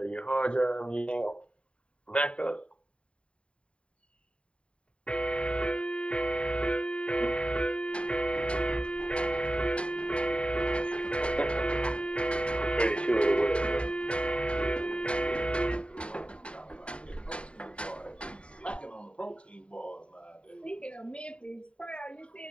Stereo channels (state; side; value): late; right; 0.058 ms